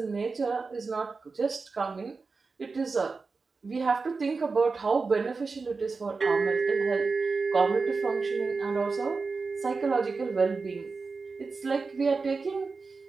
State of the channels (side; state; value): left; quieter; 4.3 dB